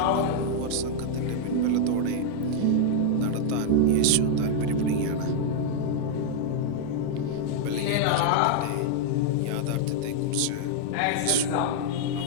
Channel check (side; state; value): both; different; correlation 0.00